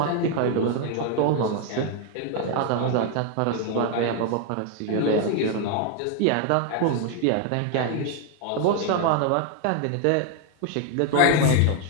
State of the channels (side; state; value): both; different; correlation 0.01